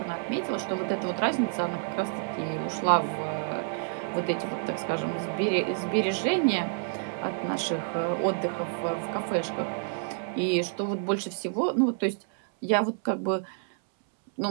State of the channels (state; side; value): silent; left; 59 dB below the other